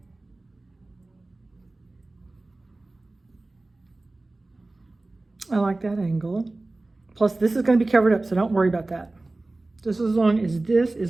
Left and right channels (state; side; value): quieter; left; 3.0 dB